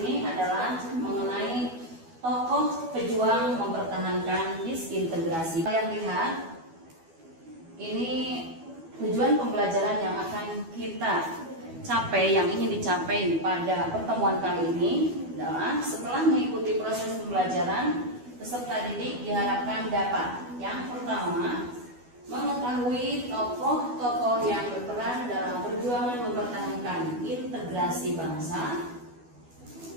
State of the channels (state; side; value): late; left; 12 ms